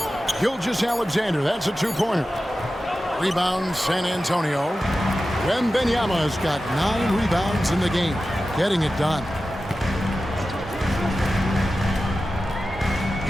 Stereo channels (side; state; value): both; normal; correlation 0.94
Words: Gilgeous-Alexander, that's a two-pointer. Rebound, San Antonio. Wembanyama's got 9 rebounds in the game, getting it done.